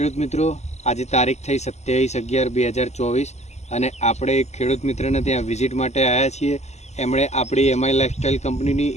મિત્રો. આજે તારીખ થઈ 27/11/2024 અને આપણે એક ખેડૂત મિત્રને ત્યાં વિઝિટ માટે આવ્યા છીએ. એમણે આપણી એમઆઈ લાઇફસ્ટાઈલ કંપનીની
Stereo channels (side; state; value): right; late; 0.33 ms